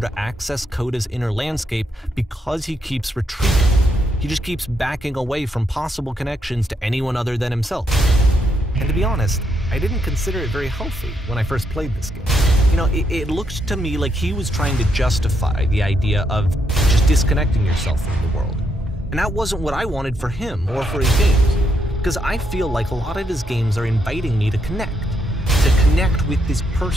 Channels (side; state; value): both; normal; correlation 0.78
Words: access Coda's inner landscape because he keeps retreating. He just keeps backing away from possible connections to anyone other than himself. And to be honest, I didn't consider it very healthy when I first played this game. You know, it looked to me like he was trying to justify the idea of just disconnecting yourself from the world. And that wasn't what I wanted for him or for his games. Because I feel like a lot of his games are inviting me to connect with this